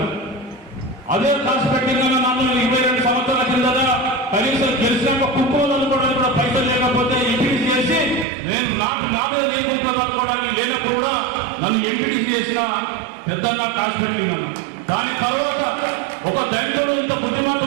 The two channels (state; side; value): drops out; left; at 8.2 s